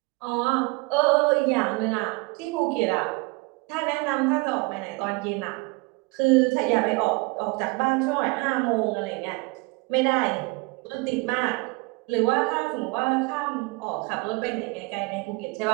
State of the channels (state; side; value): quieter; left; 26.4 dB